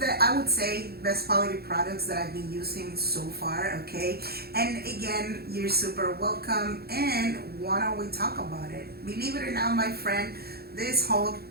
the, I would say, best quality products that I've been using so far, okay? And again, you're super welcome, and why don't we talk about it? Believe it or not, my friend, this whole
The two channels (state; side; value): late; left; 0.46 ms